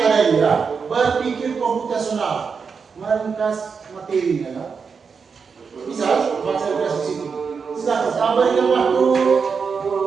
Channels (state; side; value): quieter; left; 5.6 dB